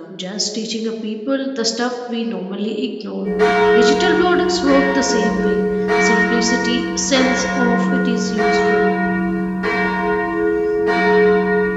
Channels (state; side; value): identical; both; correlation 1.00